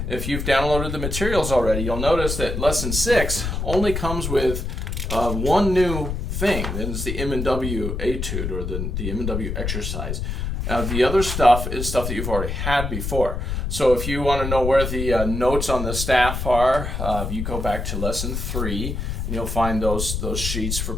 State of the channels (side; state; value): left; noise; rumble, 3 dB below the sound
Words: If you've downloaded the materials already, you'll notice that lesson 6 only comes with one new thing, and it's the M and W etude, or the M and W exercise. The other stuff is stuff that you've already had before. So if you want to know where the notes on the staff are, you go back to lesson 3, and you'll find those sheets for